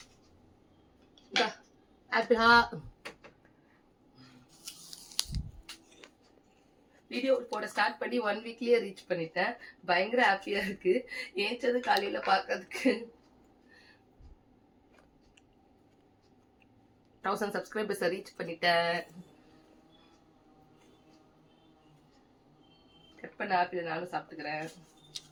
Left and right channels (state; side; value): identical; both; correlation 1.00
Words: ஆப்பிளா வீடியோ போட ஸ்டார்ட் பண்ணி 1 வீக்லயே ரீச் பண்ணிட்டேன். பயங்கர ஹாப்பியா இருக்கு. ஏஞ்சது காலையில பாக்கிறதுக்கு. 1000 சப்ஸ்கிரைபர்ஸ் ரீச் பண்ணிட்டேன். கட் பண்ண ஆப்பிள் நானும் சாப்பிட்டுக்கிறேன்.